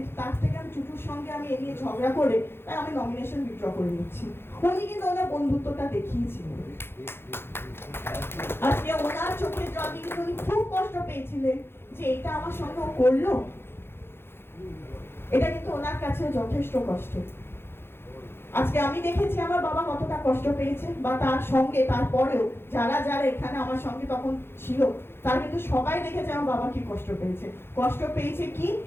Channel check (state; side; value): late; right; 0.11 ms